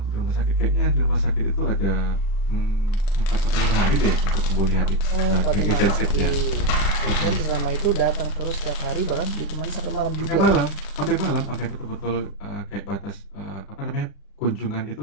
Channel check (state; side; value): late; right; 36 ms